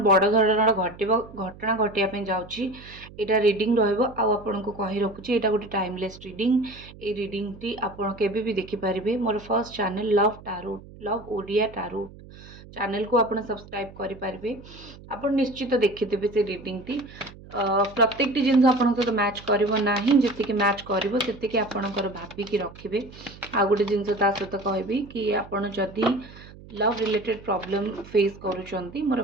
बड़ धरणर घटना घटिया पे जाउछि एटा रीडिंग रहइबो आ आपन को कहि रखुछि एटा गोटे टाइमलेस रीडिंग। ए रीडिंग टी आपण केबे भी देखि परिबे। मोर first channel love tarot love Odia tarot channel को आपण सब्सक्राइब करि परिबे। आपण निश्चित देखिथिबे से रीडिंग टी प्रत्येक टी जिनस आपण सहित मैच करिवो नाही जति मैच करिवो सेति आपणकर भाबिकी रखिबे। आ गोटे जिनस ता सहित कहबी कि आपण जदि लव रिलेटेड प्रॉब्लम फेस करूचंती मोर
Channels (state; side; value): noise; right; hum, 19 dB below the sound